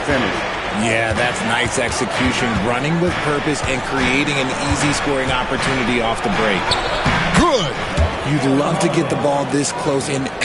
finish. Yeah, that's nice execution, running with purpose and creating an easy scoring opportunity off the break. Good. You'd love to get the ball this close in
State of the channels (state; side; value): identical; both; correlation 1.00